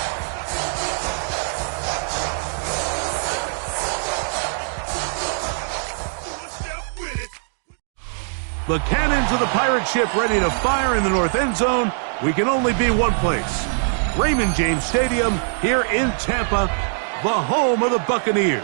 The cannons of the pirate ship ready to fire in the north end zone. We can only be one place. Raymond James Stadium here in Tampa, the home of the Buccaneers.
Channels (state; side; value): silent; left; digital silence